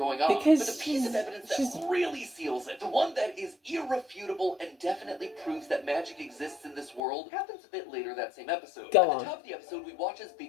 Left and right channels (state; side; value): drops out; right; at 7.0 s